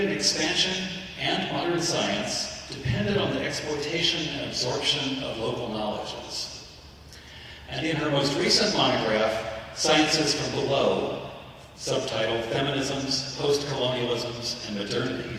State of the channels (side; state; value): both; identical; correlation 1.00